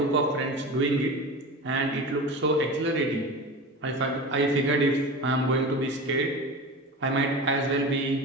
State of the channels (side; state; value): both; normal; correlation 0.31